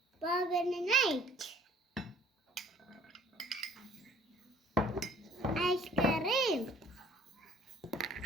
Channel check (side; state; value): both; normal; correlation 0.55